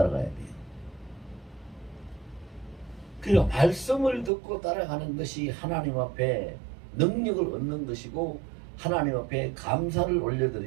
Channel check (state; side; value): drops out; left; at 4.3 s